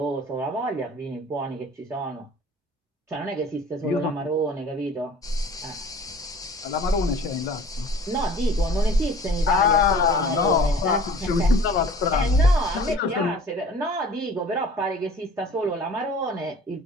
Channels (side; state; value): both; normal; correlation 0.46